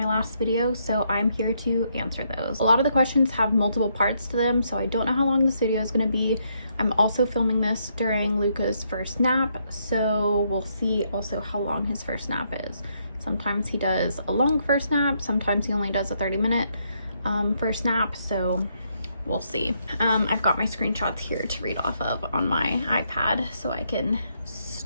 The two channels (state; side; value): inverted; both; correlation -0.75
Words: last video, so I'm here to answer those. A lot of the questions have multiple parts to them, so I don't know how long this video is going to be. I'm also filming this during Luca's first nap, so we'll see also how long his first nap is. Sometimes he does a long first nap, sometimes he only does a 30-minute first nap, so we'll see. I've got my screenshots here to read off of on my iPad so I can